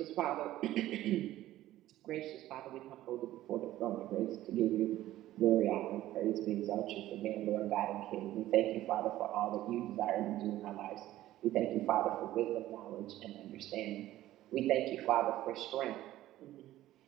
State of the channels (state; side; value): quieter; left; 14.6 dB